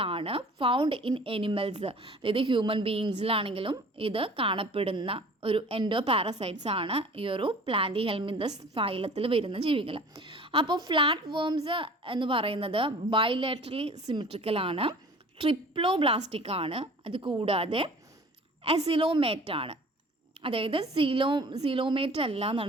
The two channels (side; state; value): both; normal; correlation 0.46